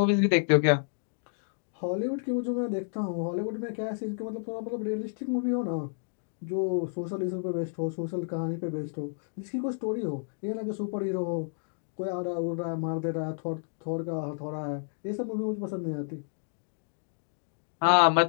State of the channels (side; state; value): right; silent; digital silence